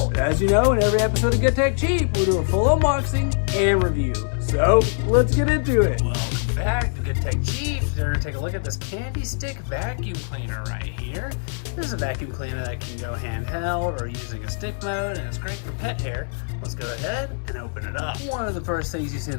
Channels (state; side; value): silent; right; digital silence